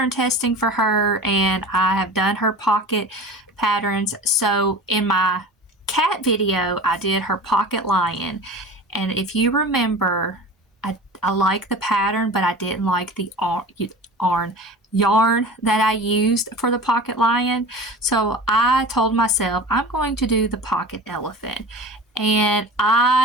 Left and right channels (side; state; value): both; normal; correlation 0.35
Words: testing for her, and I have done her pocket patterns. So in my cat video, I did her pocket lion, and if you remember, I like the pattern, but I didn't like the yarn that I used for the pocket lion. So I told myself I'm going to do the pocket elephant, and